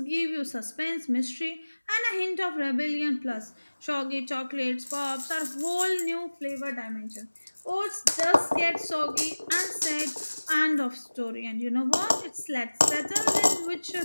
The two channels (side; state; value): both; inverted; correlation -1.00